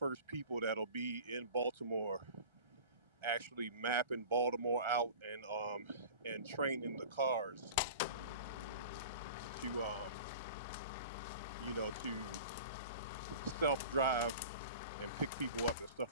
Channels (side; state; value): both; inverted; correlation -0.39